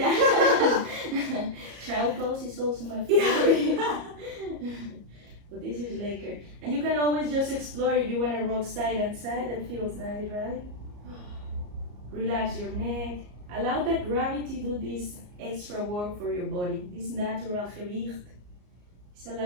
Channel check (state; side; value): late; left; 34 ms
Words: Child pose is also my favorite. But this is later. And you can always just explore if you want to rock side and side. That feels nice, right? Relax your neck. Allow that gravity to do this extra work for your body. This natural gewicht is